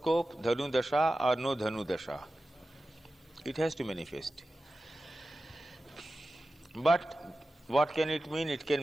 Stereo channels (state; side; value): normal; both; correlation 0.94